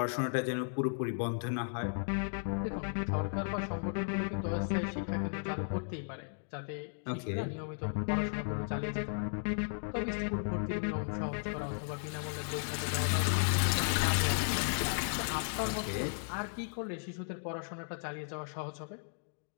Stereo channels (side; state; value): right; silent; digital silence